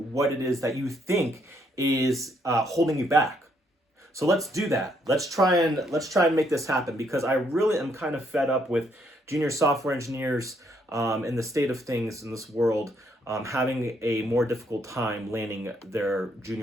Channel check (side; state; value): both; normal; correlation 0.72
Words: it is that you think is holding you back. So let's do that. Let's try and make this happen, because I really am kind of fed up with junior software engineers in the state of things in this world having a more difficult time landing their